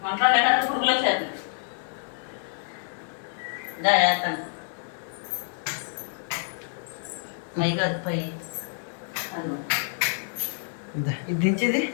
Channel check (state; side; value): silent; right; digital silence